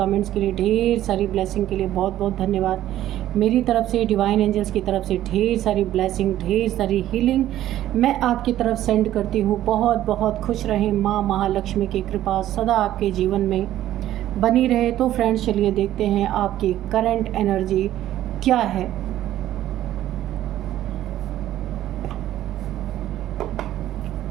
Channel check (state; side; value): quieter; left; 13.1 dB